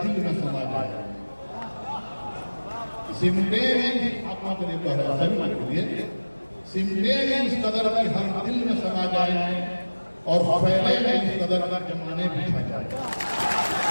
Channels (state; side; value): inverted; both; correlation -1.00